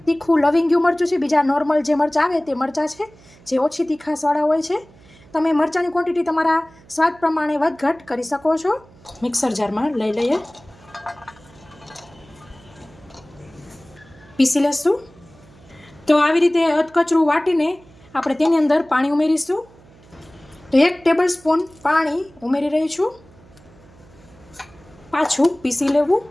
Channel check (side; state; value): right; noise; hum, 26 dB below the sound